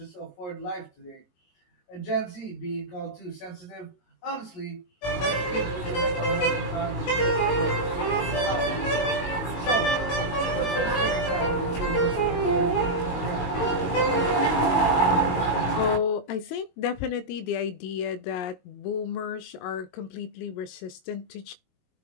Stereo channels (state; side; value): late; right; 22 ms